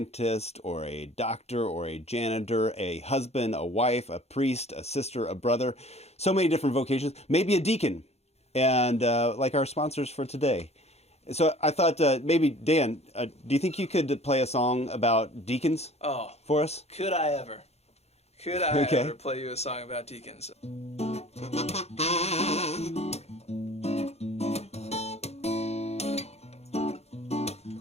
or a doctor or a janitor, a husband, a wife, a priest, a sister, a brother. So many different vocations. Maybe a deacon, and like our sponsors for today. So I thought maybe, Dan, do you think you could play a song about deacons for us? Could I ever? Could I ever play you a song about deacons?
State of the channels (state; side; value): late; right; 0.31 ms